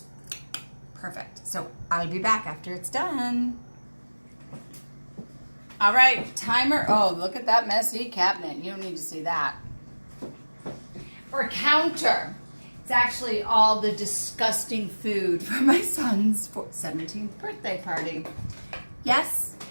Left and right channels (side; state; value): both; inverted; correlation -1.00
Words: perfect. So I'll be back after it's done. All right, timer. Oh, look at that messy cabinet. You don't need to see that. Or counter. It's actually all the disgusting food for my son's 17th birthday party. Yes,